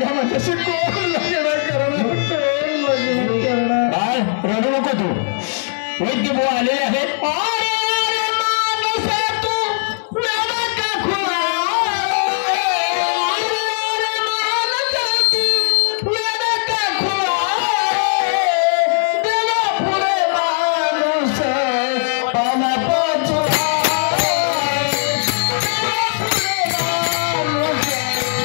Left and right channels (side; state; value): right; silent; digital silence